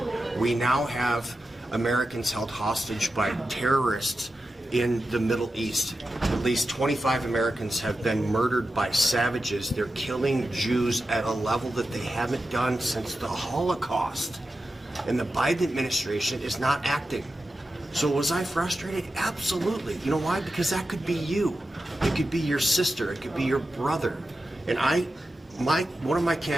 We now have Americans held hostage by terrorists in the Middle East. At least 25 Americans have been murdered by savages. They're killing Jews at a level that they haven't done since the Holocaust. And the Biden administration is not acting. So was I frustrated? Absolutely. You know why? Because that could be you. It could be your sister. It could be your brother. And one of my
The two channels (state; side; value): normal; both; correlation 0.91